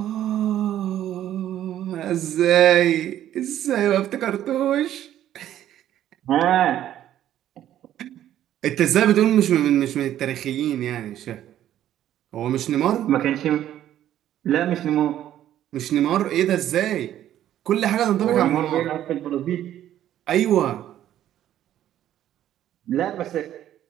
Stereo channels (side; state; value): left; quieter; 11.9 dB